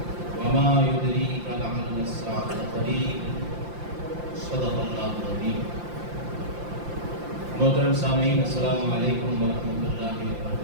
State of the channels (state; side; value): late; left; 5.8 ms